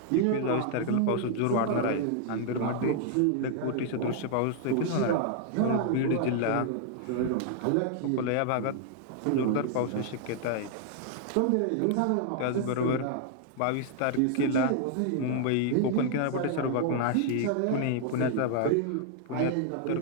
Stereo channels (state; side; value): different; both; correlation -0.01